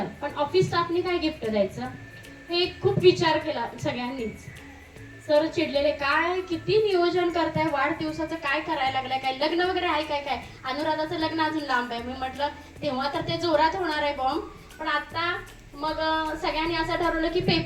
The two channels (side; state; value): both; identical; correlation 1.00